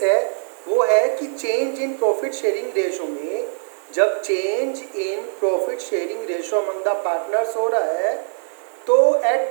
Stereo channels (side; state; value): left; silent; digital silence